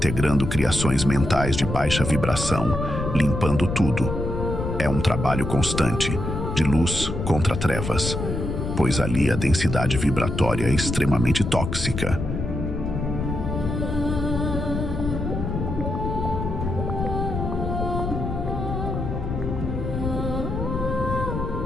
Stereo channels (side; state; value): left; noise; rumble, 4 dB below the sound